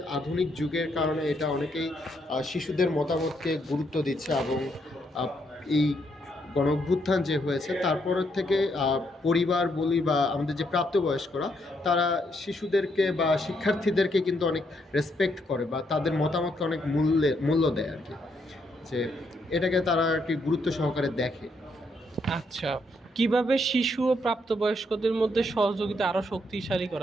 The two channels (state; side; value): normal; both; correlation 0.75